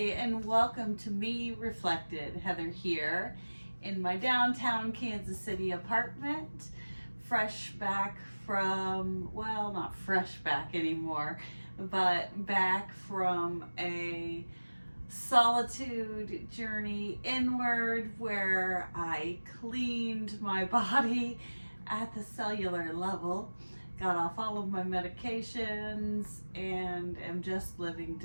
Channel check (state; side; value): inverted; both; correlation -1.00